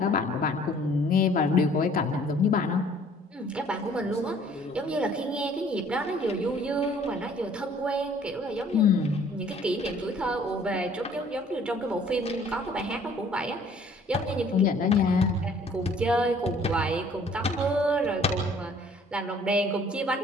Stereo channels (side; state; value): both; normal; correlation 0.56